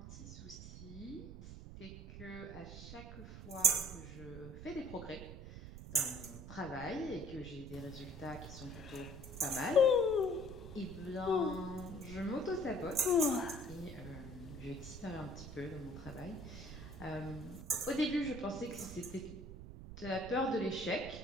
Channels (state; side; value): noise; right; rumble, 11 dB below the sound